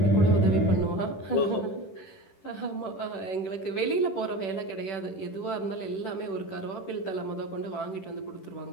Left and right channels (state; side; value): late; right; 10 ms